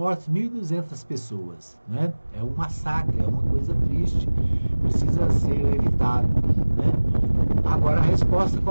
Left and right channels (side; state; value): both; inverted; correlation -1.00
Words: 1.200 pessoas, né? É um massacre, é uma coisa triste, precisa ser evitado, né? Agora, a resposta,